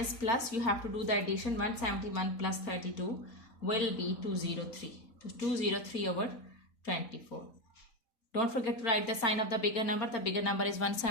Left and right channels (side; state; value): right; late; 4.3 ms